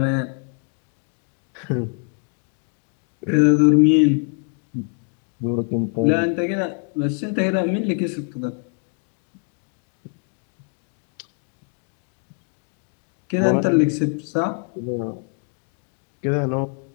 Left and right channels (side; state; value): right; quieter; 40.0 dB